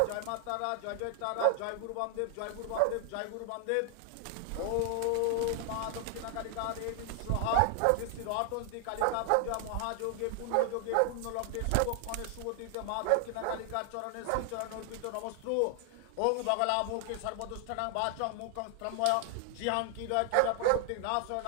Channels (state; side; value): different; both; correlation 0.00